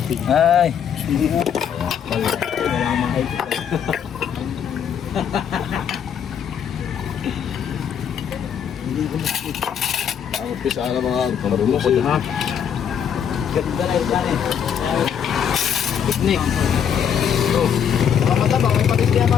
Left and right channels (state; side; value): quieter; right; 8.2 dB